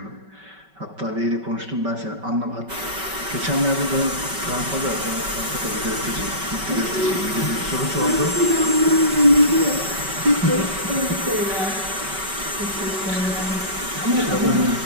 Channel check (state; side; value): late; left; 5.2 ms